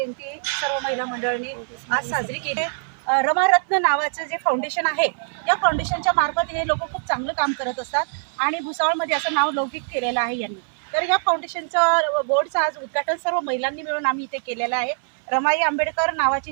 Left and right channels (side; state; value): left; silent; 63 dB below the other